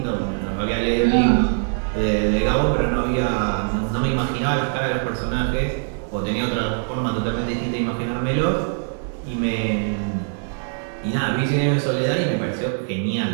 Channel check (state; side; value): silent; left; digital silence